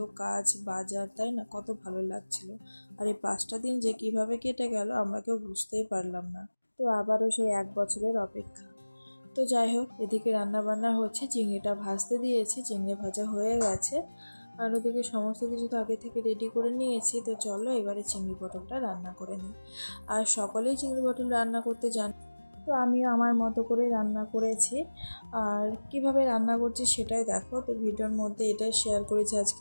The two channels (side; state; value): both; inverted; correlation -1.00